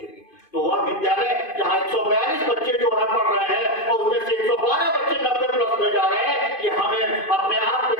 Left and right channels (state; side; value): late; right; 2.5 ms